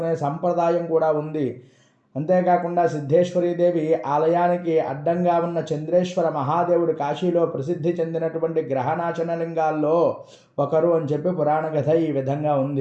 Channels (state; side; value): identical; both; correlation 1.00